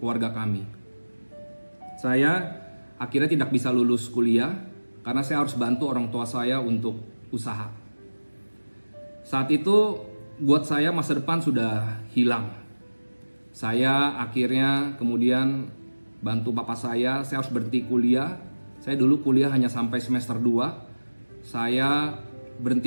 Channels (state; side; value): inverted; both; correlation -1.00